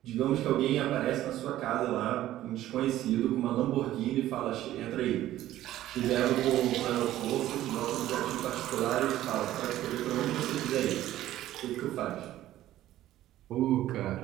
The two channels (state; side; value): quieter; left; 13.9 dB